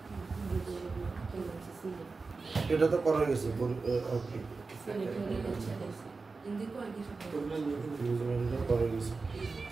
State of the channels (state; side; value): quieter; left; 4.1 dB